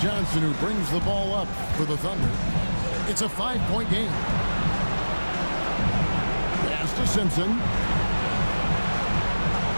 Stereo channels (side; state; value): both; inverted; correlation -1.00